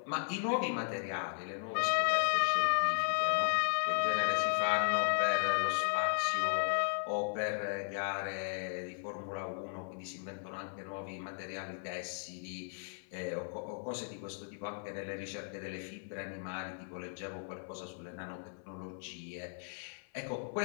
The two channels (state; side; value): silent; right; 54 dB below the other